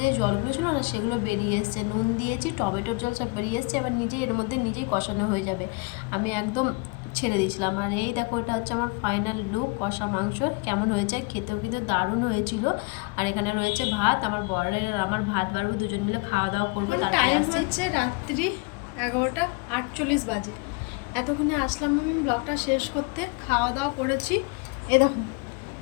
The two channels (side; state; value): right; quieter; 28.6 dB